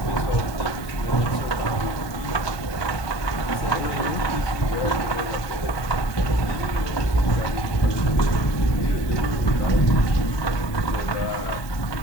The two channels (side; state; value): right; late; 1.2 ms